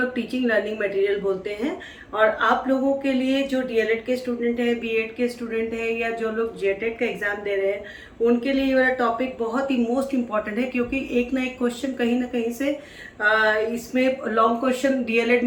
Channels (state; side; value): identical; both; correlation 1.00